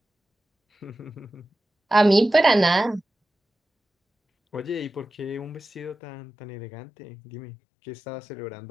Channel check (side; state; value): right; drops out; at 6.0 s